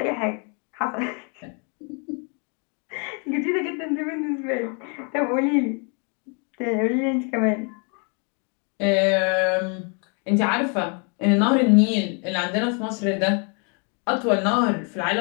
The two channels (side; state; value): right; quieter; 37.2 dB